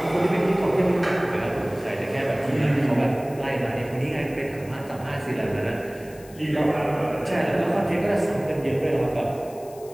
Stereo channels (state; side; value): noise; left; hiss, 23 dB below the sound